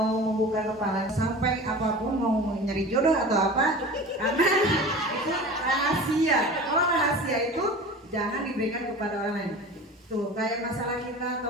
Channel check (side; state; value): both; normal; correlation 0.36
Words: membuka kepala sampai apapun mau nyari jodoh atau apa, karena itu rahasia. Kalau rahasia itu jangan diberikan kepada orang lain. Tuh kayak masalah kita